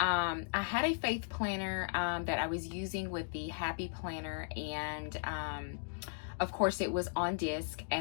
had a faith planner that I was using with the Happy Planner, and of course it was on disc,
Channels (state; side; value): silent; right; 53 dB below the other